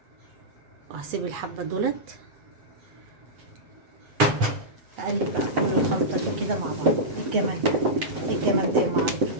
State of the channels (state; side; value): late; left; 7.7 ms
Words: وهسيب الحبه دولت. اقلب بقى كل الخلطه دي كده مع بعض. الجمال ده، الجمال ده يا معلم،